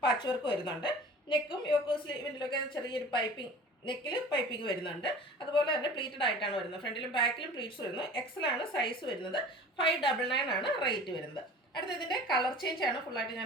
പാച്ച് വർക്ക് വരുന്നുണ്ട്. നെക്കും യോക്ക് സ്ലീവിലൊക്കെ ചെറിയൊരു പൈപ്പിംഗ്, നെക്കിൽ പൈപ്പിംഗ് വരുന്നുണ്ട്. അതുപോലെ തന്നെ പ്ലീറ്റഡ് ആയിട്ടാണ് വരുന്നത്. ഫ്രണ്ടിലും ബാക്കിലും പ്ലീറ്റ്സ് വരുന്നു. എക്സലാണ് സൈസ് വരുന്നത്. 599 ആണ് റേറ്റ് വരുന്നത്. അടുത്ത ഇതിൻ്റെ കളർ ചേഞ്ച് ആണ്. ഫുള്ളായിട്ട്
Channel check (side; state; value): both; normal; correlation 0.42